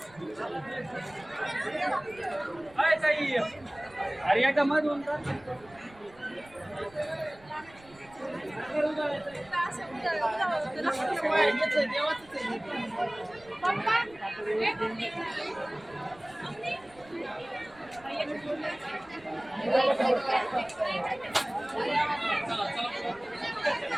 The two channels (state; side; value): noise; right; rumble, 25 dB below the sound